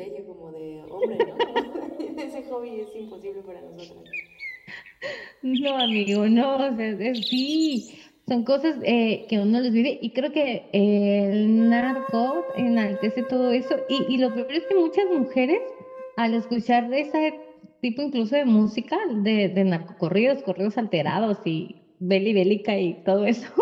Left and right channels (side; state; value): both; identical; correlation 1.00